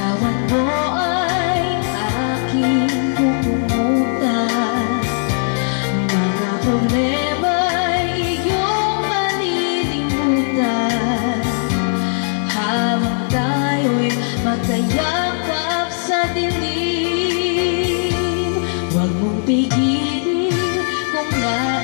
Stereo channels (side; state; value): right; silent; digital silence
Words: mo ay aking pupumutan. Mga problema'y iyong malilimutan habang tayo'y magkayakap sa dilim. Huwag mong pigilin kung